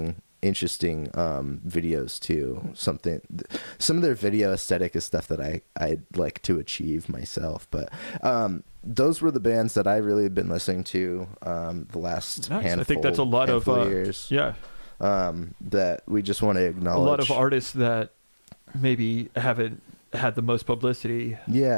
videos too. Some of their video aesthetic is stuff that I'd like to achieve myself, but those were the bands that I really have been listening to the last handful. I think that's a lot of years. That we just want to acknowledge. A lot of artists that maybe haven't had the most publicity.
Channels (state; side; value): inverted; both; correlation -1.00